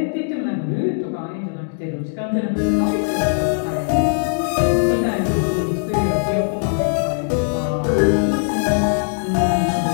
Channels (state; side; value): silent; right; digital silence